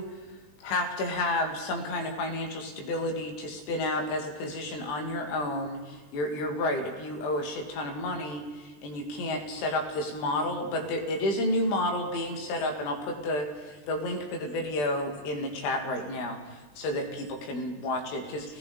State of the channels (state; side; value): late; right; 20 ms